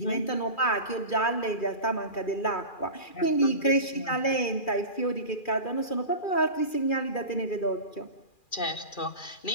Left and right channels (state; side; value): late; right; 2.4 ms